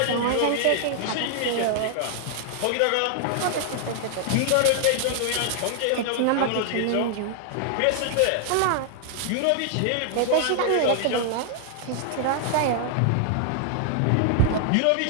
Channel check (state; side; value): different; both; correlation 0.00